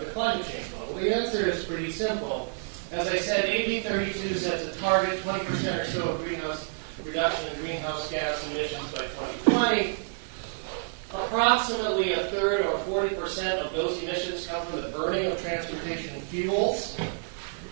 climate change law? Well, the answer is pretty simple. As I said, AB 32 sets a target, 20% or so of greenhouse reduction in greenhouse gas emissions by 2020. Approximately a third or 40% of those emissions come from the burning of transportation fuels.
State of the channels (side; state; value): left; silent; digital silence